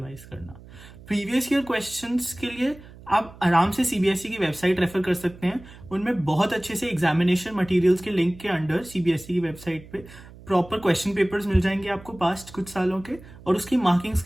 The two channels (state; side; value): noise; right; hum, 19 dB below the sound